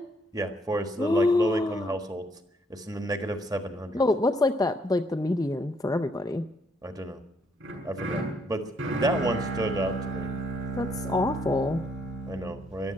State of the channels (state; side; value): normal; both; correlation 0.70